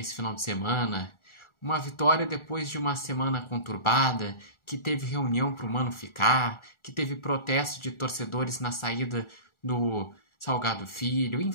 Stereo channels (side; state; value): right; late; 1.4 ms